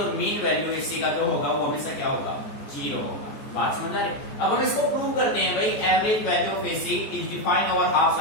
मीन वैल्यू एसी का जो होगा वो हमेशा क्या होगा, 0 होगा। बात समझ आ रही? अब हम इसको प्रूव करते हैं भाई, average value of AC is defined over half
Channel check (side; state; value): right; late; 14 ms